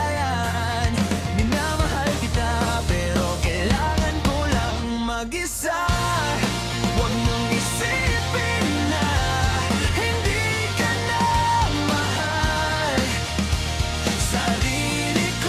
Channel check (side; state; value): both; identical; correlation 1.00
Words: minamahal kita pero kailangan ko lang mag-isa. Huwag mong isipin na hindi ka na mahal. Sarili